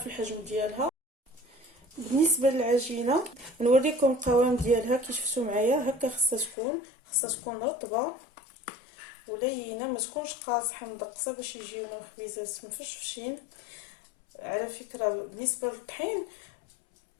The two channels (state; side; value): drops out; right; at 6.6 s